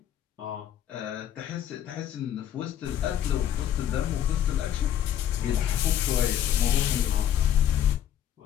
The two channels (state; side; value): quieter; right; 10.5 dB